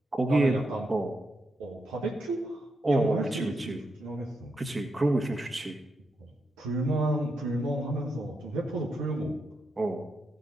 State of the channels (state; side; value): normal; both; correlation 0.83